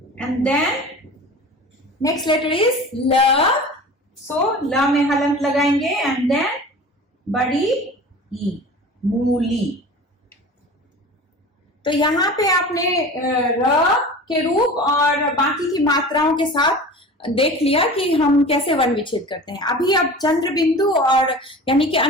And then next letter is la, so ल में हलंत लगाएंगे एंड देन बड़ी ई, मूली। तो यहाँ पे आपने र के रूप और बाकी की मात्राओं के साथ देख लिया कि हम कैसे वर्ण विच्छेद करते हैं। अभी अब चंद्र बिंदु और यानी कि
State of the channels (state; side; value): normal; both; correlation 0.37